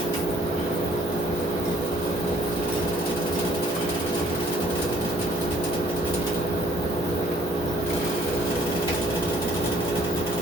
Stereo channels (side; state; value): both; normal; correlation 0.61